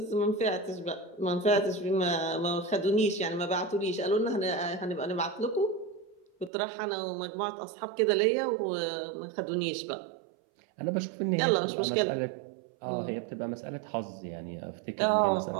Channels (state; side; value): drops out; left; at 6.5 s